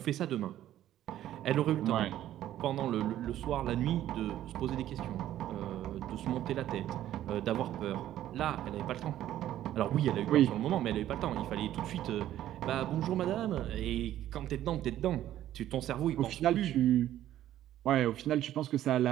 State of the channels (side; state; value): left; quieter; 12.6 dB